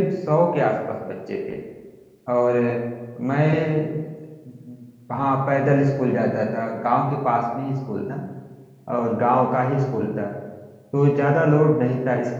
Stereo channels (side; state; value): both; identical; correlation 1.00